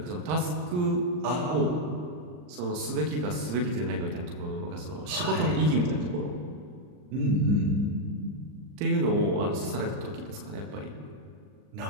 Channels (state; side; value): late; left; 39 ms